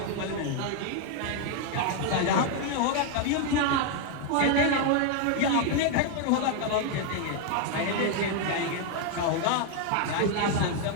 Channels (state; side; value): different; both; correlation 0.01